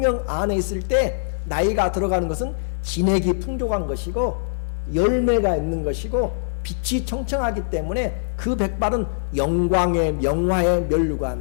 안에 있을 때 나이가 들어가는 것은 진액이 풍족한 것이고 열매가 있는 것이고 빛이 청청하기 때문에 그 백발은 영광의, 영화의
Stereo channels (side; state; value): right; silent; digital silence